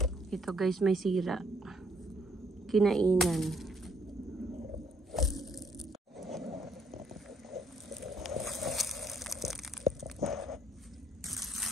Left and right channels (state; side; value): normal; both; correlation 0.68